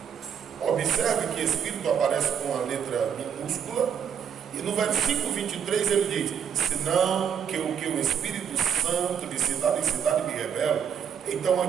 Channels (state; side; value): quieter; left; 8.0 dB